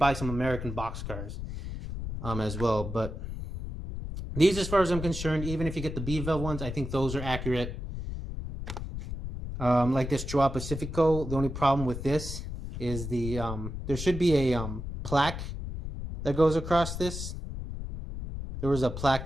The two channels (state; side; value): noise; left; rumble, 7 dB below the sound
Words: some American boxcars as well. But these, as far as I'm concerned, even if you get the Bev-Bel ones, I think those are accurate. Like this Joao Pacifico, the only problem with this is the there should be a plaque that goes across this. There was a plaque